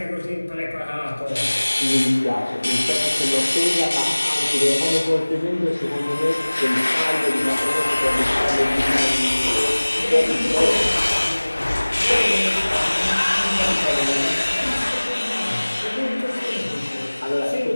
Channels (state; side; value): inverted; both; correlation -1.00